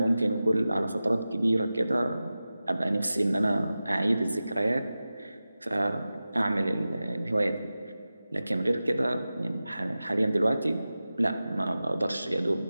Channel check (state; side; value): inverted; both; correlation -0.95